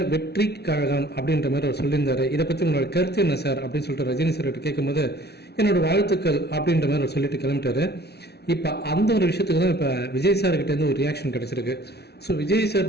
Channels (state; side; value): late; right; 0.48 ms